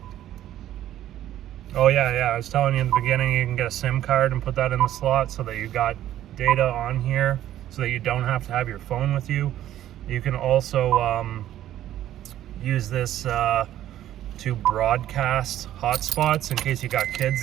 Oh yeah, I was telling you in the beginning, you can get a SIM card and put that in the slot so that you got data on here, so that you don't have to have your phone with you. You can also use this to broadcast hotspots in case you got kids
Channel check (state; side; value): quieter; left; 12.5 dB